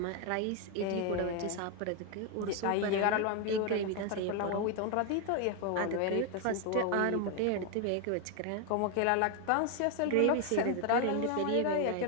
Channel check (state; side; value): different; both; correlation 0.01